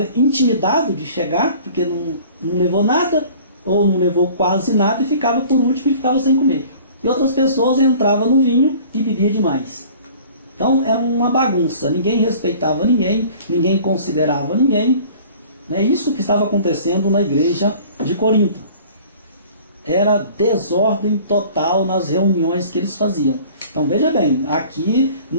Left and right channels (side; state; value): both; inverted; correlation -0.48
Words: intimidado de chegar, porque não levou nada, ou não levou quase nada, e ficava por último e ficava sem comer. E outras pessoas entravam no vinho e bebiam demais. Então era uma bagunça, ninguém respeitava ninguém, ninguém considerava ninguém. É isso que estava acontecendo na igreja de Corinto. Era desordem total nas reuniões que eles faziam. Então veja bem, aqui